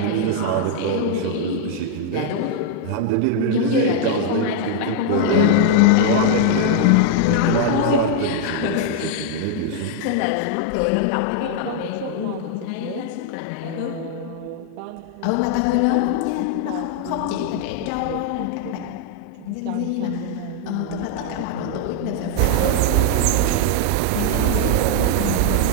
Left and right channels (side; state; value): both; different; correlation 0.00